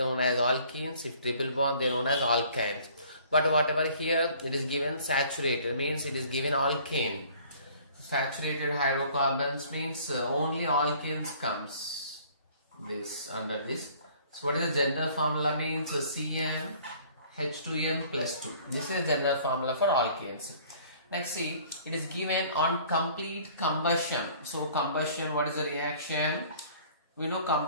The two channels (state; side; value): inverted; both; correlation -0.53